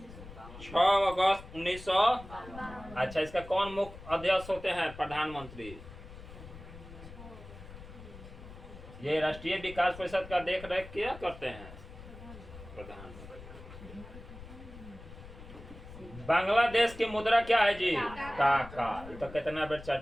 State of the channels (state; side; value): noise; left; rumble, 15 dB below the sound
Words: 6 अगस्त 1900। अच्छा, इसका कौन मुख्य अध्यक्ष होते हैं? प्रधानमंत्री। ये राष्ट्रीय विकास परिषद का देख रेख क्या करते हैं? प्रधानमंत्री। बांग्लादेश की मुद्रा क्या है जी? टाका। ये तो कितना बार